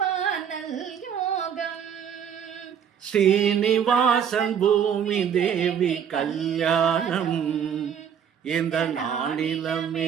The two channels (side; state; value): left; quieter; 8.2 dB